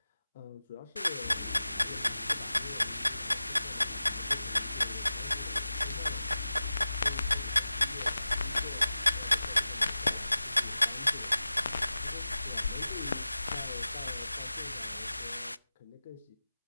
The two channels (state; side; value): inverted; both; correlation -0.95